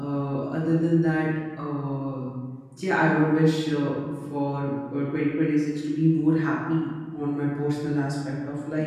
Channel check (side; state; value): both; identical; correlation 1.00